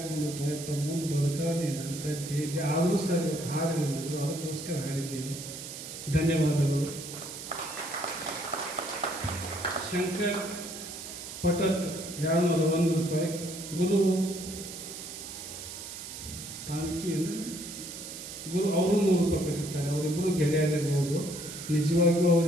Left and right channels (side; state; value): right; noise; hiss, 10 dB below the sound